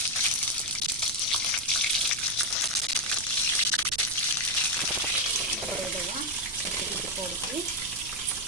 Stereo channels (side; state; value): right; noise; rumble, 17 dB below the sound